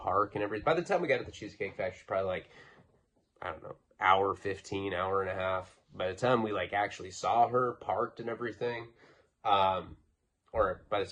and everything, by the time we got to the Cheesecake Factory, probably like, I don't know, hour 15, hour and a half. By the time we like actually saw her parked and everything, or by the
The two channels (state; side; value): identical; both; correlation 1.00